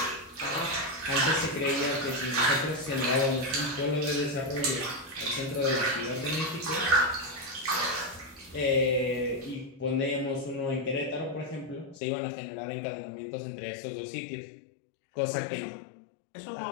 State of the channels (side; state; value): right; drops out; at 12.0 s